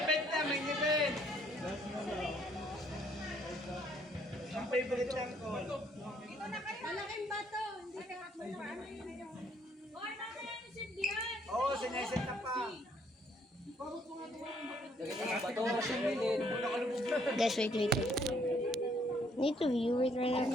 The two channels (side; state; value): both; normal; correlation 0.66